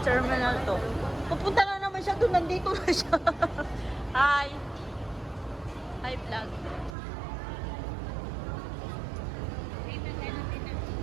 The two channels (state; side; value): drops out; left; at 7.0 s